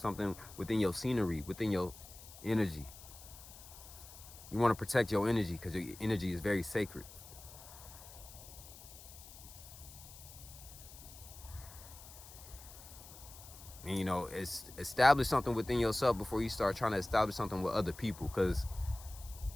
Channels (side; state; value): left; noise; hiss, 17 dB below the sound